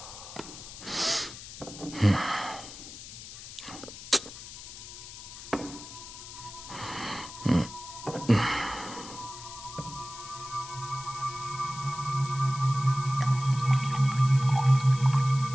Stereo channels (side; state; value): left; noise; hiss, 13 dB below the sound